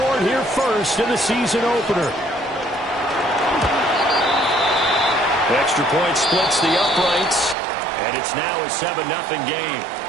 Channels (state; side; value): drops out; left; at 7.6 s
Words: here first in the season opener. Extra point splits the uprights. And it's now a 7-0 game.